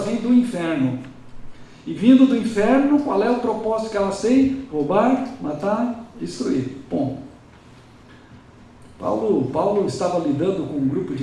vêm do inferno. E vindo do inferno, qual é o propósito que elas têm? Roubar, matar, destruir. Ponto. Paulo estava lidando com um grupo de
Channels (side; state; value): both; identical; correlation 1.00